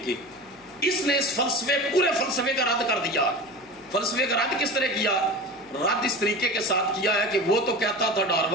کی، اس نے اس پورے فلسفے کا رد کر دیا۔ فلسفے کا رد کس طرح کیا؟ رد اس طریقے کے ساتھ کیا ہے کہ وہ تو کہتا تھا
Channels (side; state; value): left; noise; hum, 30 dB below the sound